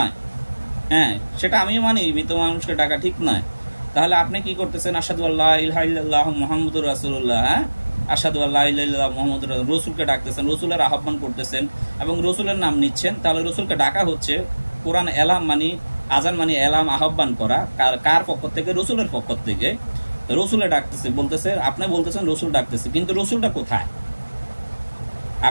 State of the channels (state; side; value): inverted; both; correlation -1.00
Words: হ্যাঁ, সেটা আমিও মানি, মৃত মানুষকে ডাকা ঠিক নয়। তাহলে আপনি কি করতেছেন? আশহাদু আল্লা ইলাহা ইল্লাল্লাহু মুহাম্মাদুর রাসূলুল্লাহ, হ্যাঁ, আশহাদু আল্লা ইলাহা ইল্লাল্লাহু মুহাম্মাদুর রসুলকে ডাকতেছেন, রসুলের আহ্বান করতেছেন এবং রসুলের নাম নিচ্ছেন। তাহলে রসুলকে ডাকা হচ্ছে, কোরআন এলাম মানে আজান মানে এলাম, আহ্বান করা, কার পক্ষ থেকে? রসুলের পক্ষ থেকে। রসুলে ডাকতেছে, বলতেছে, আপনি বলতেছেন রসুল ডাকতেছে, কিন্তু রসুলটা কোথায়?